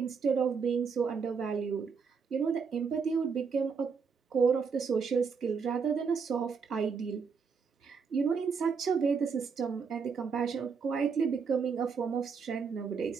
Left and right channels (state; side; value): quieter; left; 5.7 dB